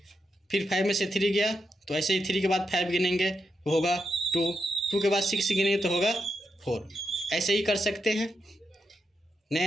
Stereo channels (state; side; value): normal; both; correlation 0.84